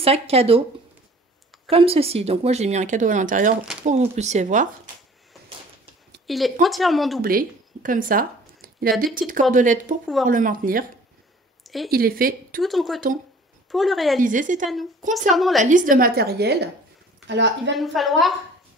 cadeau comme ceci. Donc moi j'ai mis un cadeau à l'intérieur pour que vous puissiez voir. Il est entièrement doublé comme ça. Il a des petites cordelettes pour pouvoir le maintenir et il est fait tout en coton. Pour le réaliser, c'est à nous. Concernant la liste de matériel, alors il va nous falloir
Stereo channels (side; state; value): both; normal; correlation 0.50